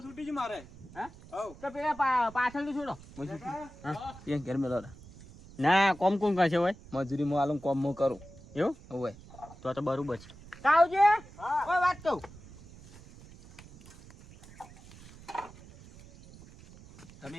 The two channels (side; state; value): right; noise; rumble, 20 dB below the sound